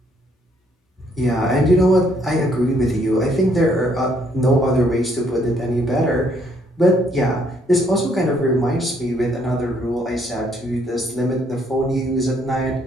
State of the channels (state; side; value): normal; both; correlation 0.68